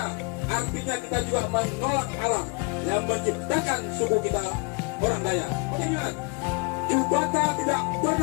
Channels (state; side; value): quieter; right; 31.3 dB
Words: artinya kita juga menolak Allah yang menciptakan suku kita, orang Dayak. Ingat, Jubata tidak